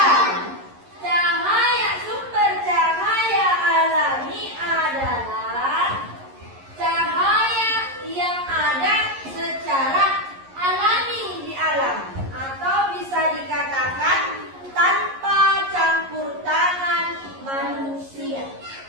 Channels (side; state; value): left; late; 11 ms